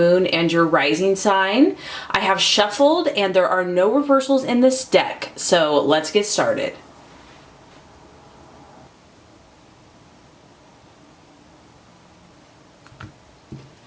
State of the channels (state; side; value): identical; both; correlation 1.00